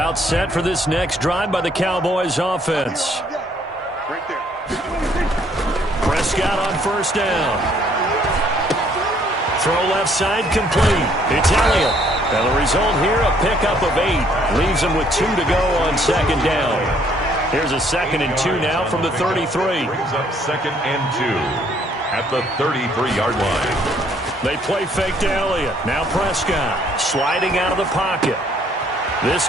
set for this next drive by the Cowboys offense. Prescott on first down. Throw left side complete. It's Elliott. And the result here, a pickup of 8. Leaves him with 2 to go on second down. Here's a 2nd and 2 now from the 33. Brings up 2nd and 2 at the 33-yard line. They play fake to Elliott. Now Prescott sliding out of the pocket. This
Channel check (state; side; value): normal; both; correlation 0.65